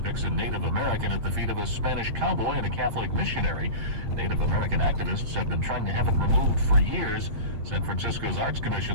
a Native American at the feet of a Spanish cowboy and a Catholic missionary. Native American activists have been trying to have it removed for years. San Francisco's Arts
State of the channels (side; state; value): left; late; 8.9 ms